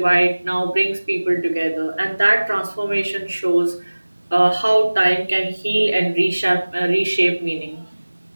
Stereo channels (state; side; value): inverted; both; correlation -1.00